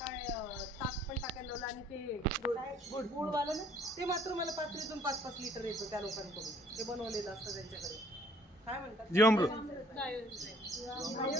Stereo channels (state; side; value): normal; both; correlation 0.59